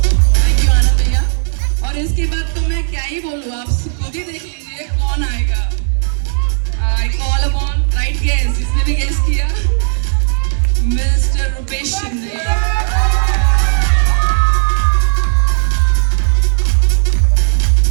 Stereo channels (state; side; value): silent; left; digital silence